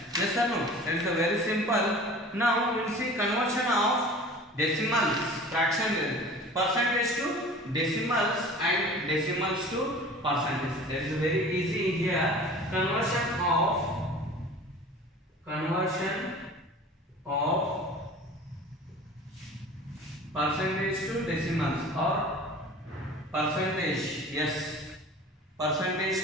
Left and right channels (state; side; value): normal; both; correlation 0.42